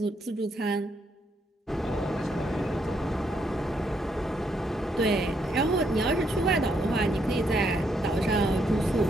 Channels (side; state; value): both; normal; correlation 0.75